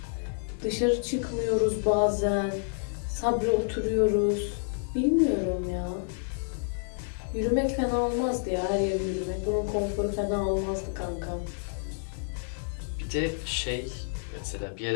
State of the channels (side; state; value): right; silent; digital silence